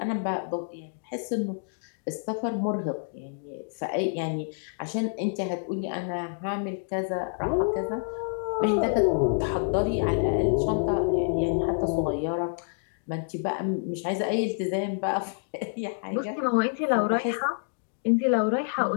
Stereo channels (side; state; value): right; silent; digital silence